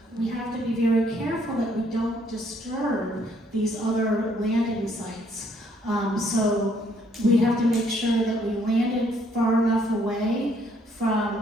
we have to be very careful that we don't disturb these other landing sites. So we have to make sure that we landed far enough away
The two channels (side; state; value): both; normal; correlation 0.67